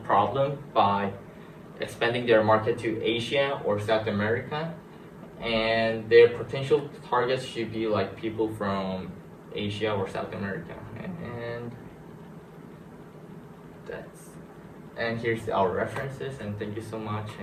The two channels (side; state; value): both; identical; correlation 1.00